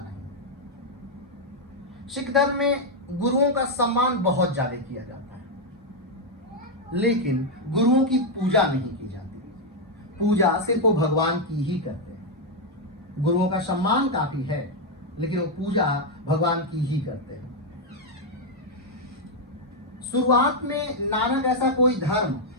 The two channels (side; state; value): both; normal; correlation 0.01